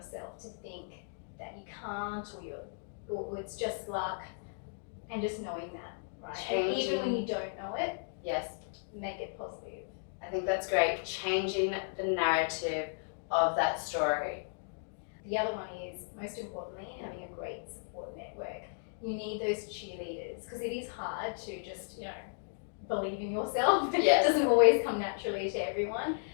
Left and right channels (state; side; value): silent; right; digital silence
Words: to think that you can't or you're or it's just luck, and just knowing that, right? Changing. And even when you don't know it, Yes. make it positive. I think that's great. Changing the narrative of that story. The other one is, most importantly, having a great support network. You need those cheerleaders, because it is hard to just, believe in yourself. Yes. It doesn't always come naturally to everyone.